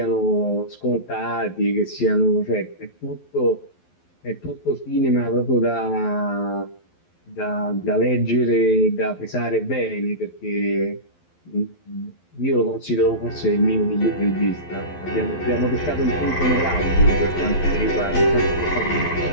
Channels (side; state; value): right; late; 12 ms